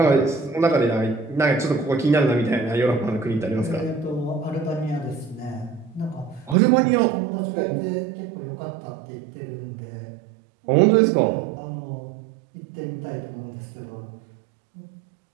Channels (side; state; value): left; drops out; at 6.6 s